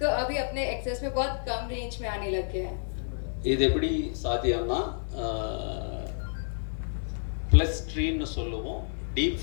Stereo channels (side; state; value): right; silent; 58 dB below the other